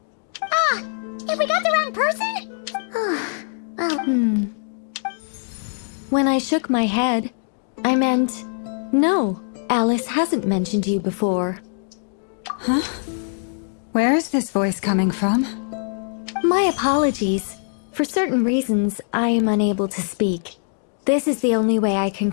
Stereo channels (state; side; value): silent; right; digital silence